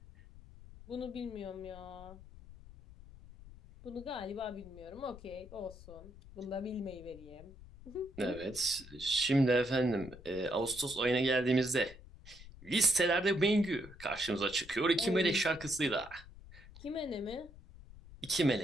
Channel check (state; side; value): noise; left; rumble, 18 dB below the sound